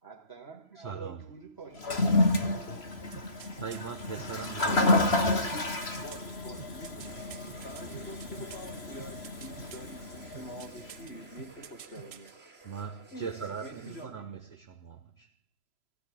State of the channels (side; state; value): right; late; 3.0 ms